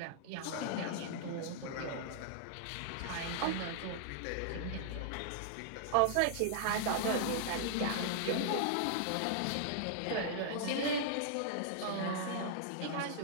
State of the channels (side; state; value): both; different; correlation -0.01